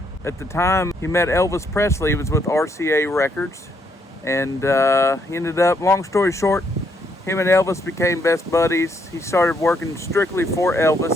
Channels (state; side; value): normal; both; correlation 0.73